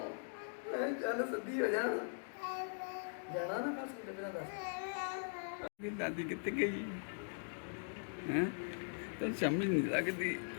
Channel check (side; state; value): right; silent; digital silence